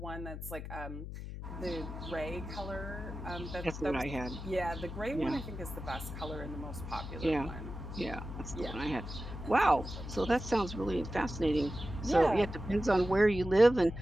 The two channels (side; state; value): left; noise; hum, 8 dB below the sound